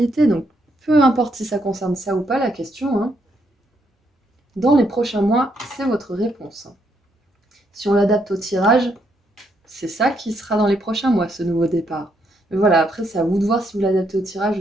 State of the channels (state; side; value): normal; both; correlation 0.75